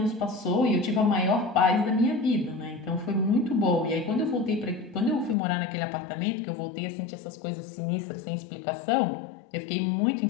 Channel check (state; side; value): drops out; right; at 5.4 s